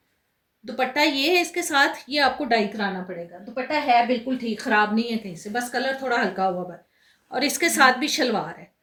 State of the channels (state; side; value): identical; both; correlation 1.00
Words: दुपट्टा ये है इसके साथ, ये आपको डाई कराना पड़ेगा। दुपट्टा है बिल्कुल ठीक, ख़राब नहीं है कहीं से, बस कलर थोड़ा हल्का हुआ बस। और इसके साथ भी शलवार है।